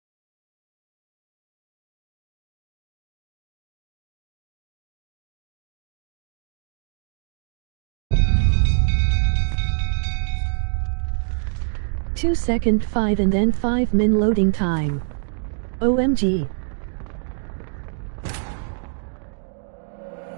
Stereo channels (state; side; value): silent; left; digital silence